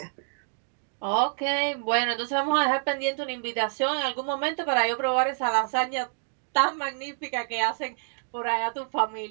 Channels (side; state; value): left; silent; digital silence